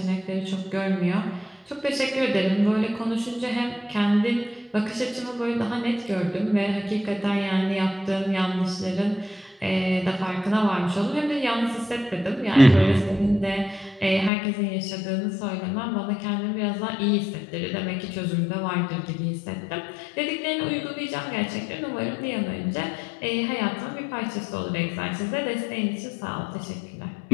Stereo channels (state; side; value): drops out; right; at 14.3 s